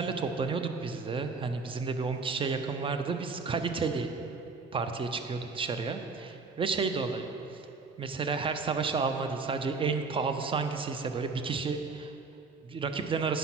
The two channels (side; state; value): left; quieter; 4.4 dB